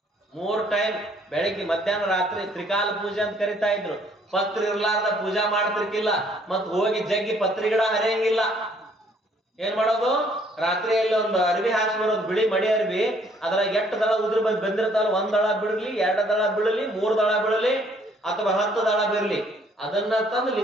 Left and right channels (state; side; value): normal; both; correlation 0.63